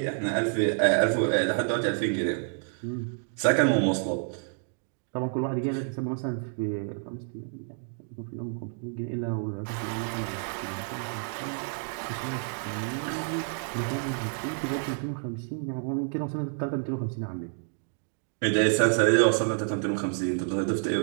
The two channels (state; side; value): silent; left; 59 dB below the other